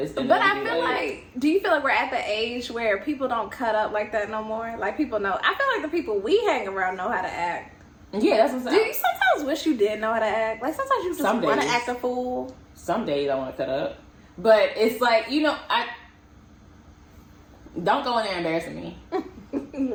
But I feel like, do you feel like we're at the age where people don't cut up like that no more? Like, people know. I feel like the people we hang around know how to act. Yeah, that's what I'm saying. Do you sometimes wish you did know how to act? Like, sometimes you just want to act a fool. Some days I want to cut up. But it's like, I don't go in there embarrassing me.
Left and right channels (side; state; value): both; identical; correlation 1.00